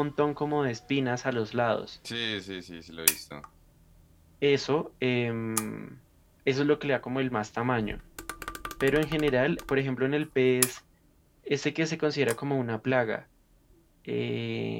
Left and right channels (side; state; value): both; identical; correlation 1.00